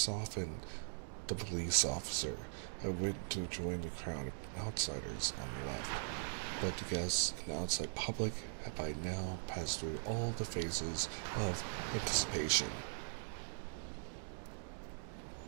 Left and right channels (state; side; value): silent; left; digital silence